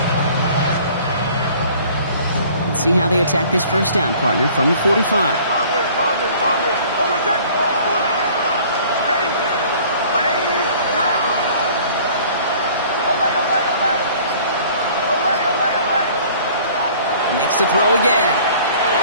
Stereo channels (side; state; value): both; inverted; correlation -0.51